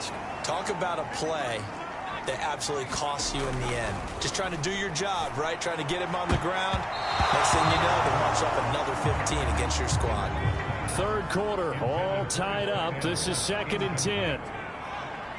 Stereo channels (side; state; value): both; identical; correlation 1.00